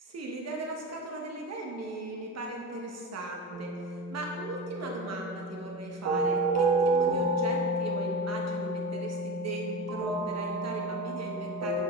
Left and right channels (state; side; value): normal; both; correlation 0.25